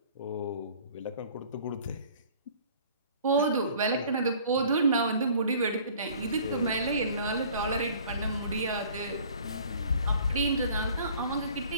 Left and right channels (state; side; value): inverted; both; correlation -0.51